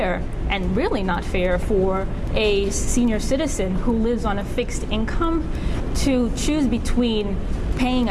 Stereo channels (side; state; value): both; identical; correlation 1.00